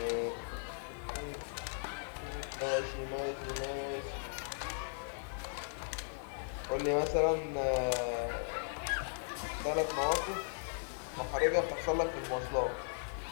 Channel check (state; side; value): silent; right; digital silence